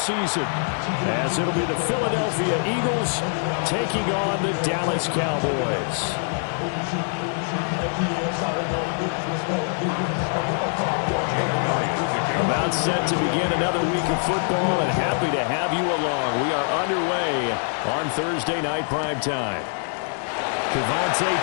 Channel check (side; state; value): right; silent; 58 dB below the other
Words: as it'll be the Philadelphia Eagles taking on the Dallas Cowboys. About set to begin another week of football, and happy to have you along. We are underway on Thursday night primetime. Kevontae